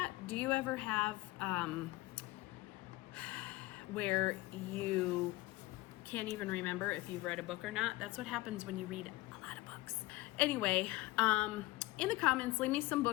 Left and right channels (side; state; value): right; quieter; 19.6 dB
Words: Do you ever have where you can't even remember if you've read a book or not? That's what happens when you read a lot of books. Anyway, in the comments, leave me some